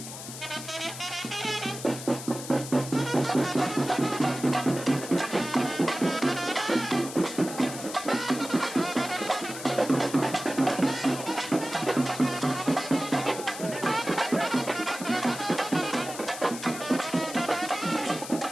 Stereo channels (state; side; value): noise; left; hiss, 11 dB below the sound